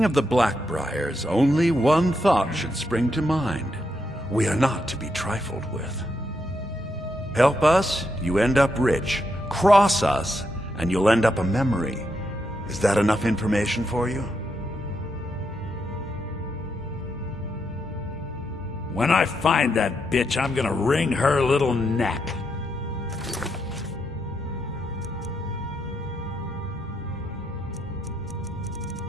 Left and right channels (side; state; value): both; normal; correlation 0.81